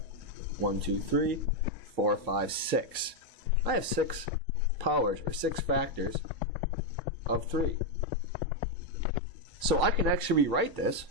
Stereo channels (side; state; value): both; normal; correlation 0.02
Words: 1, 2, 3, 4, 5, 6. I have 6 powers, or 6 factors of 3. So I can actually rewrite this